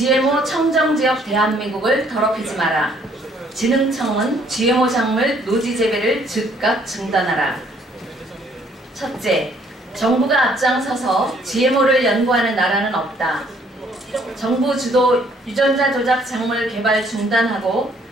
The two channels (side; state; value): both; normal; correlation 0.63